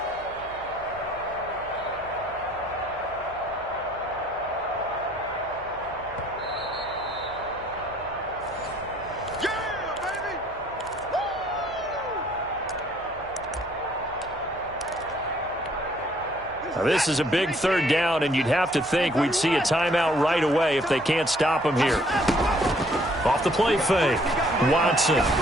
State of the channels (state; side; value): noise; right; hum, 22 dB below the sound